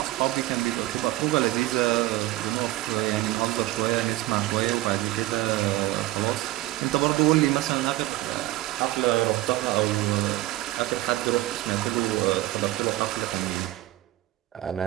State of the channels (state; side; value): quieter; left; 17.0 dB